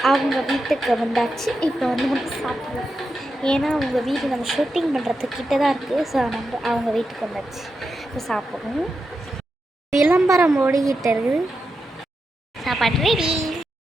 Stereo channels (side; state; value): both; normal; correlation 0.88